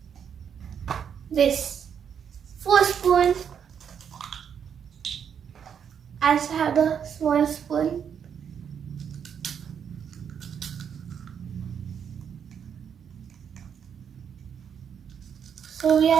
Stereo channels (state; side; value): quieter; left; 7.8 dB